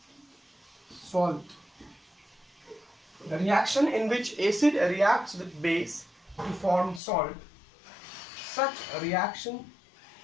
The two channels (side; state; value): right; drops out; at 7.0 s